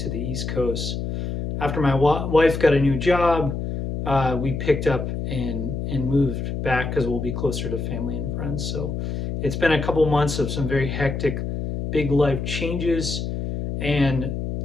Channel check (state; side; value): noise; left; hum, 4 dB below the sound